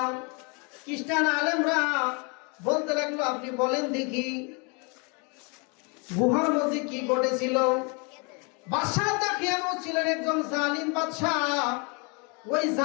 খ্রিস্টান আলেমরা বলতে লাগলো, আপনি বলেন দেখি গুহার মধ্যে কি ঘটেছিল। বাদশাহ দাকিয়ানুস ছিলেন একজন জালিম বাদশাহ। ওই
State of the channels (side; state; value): right; quieter; 32.6 dB